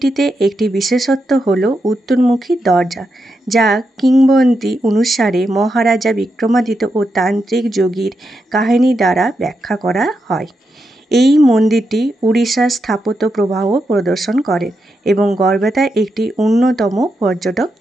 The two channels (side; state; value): both; normal; correlation 0.85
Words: একটি বিশেষত্ব হল উত্তরমুখী দরজা, যা কিংবদন্তি অনুসারে মহারাজা বিক্রমাদিত্য ও তান্ত্রিক যোগীর কাহিনী দ্বারা ব্যাখ্যা করা হয়। এই মন্দিরটি উড়িষ্যার স্থাপত্য প্রবাহ প্রদর্শন করে এবং গড়বেতার একটি অন্যতম পর্যটক